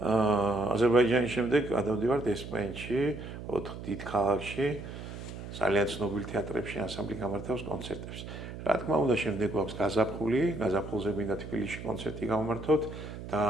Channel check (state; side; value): noise; right; hum, 10 dB below the sound